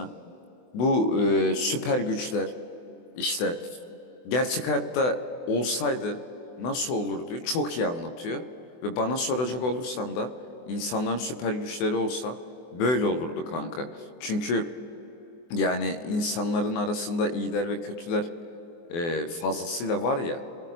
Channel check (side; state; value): right; late; 24 ms